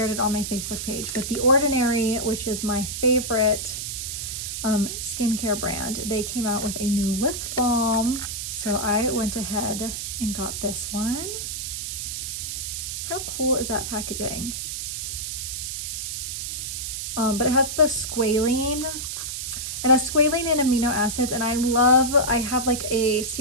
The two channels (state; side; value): noise; right; hiss, 4 dB below the sound